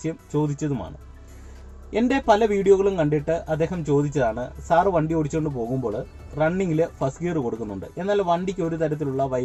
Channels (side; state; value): both; identical; correlation 1.00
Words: ചോദിച്ചതുമാണ്. എൻ്റെ പല വീഡിയോകളും കണ്ടിട്ട് അദ്ദേഹം ചോദിച്ചതാണ്, സാറ് വണ്ടി ഓടിച്ചുകൊണ്ട് പോകുമ്പോൾ റണ്ണിങ്ങിൽ ഫസ്റ്റ് ഗിയർ കൊടുക്കുന്നുണ്ട്, എന്നാൽ വണ്ടിക്ക് ഒരു തരത്തിലുള്ള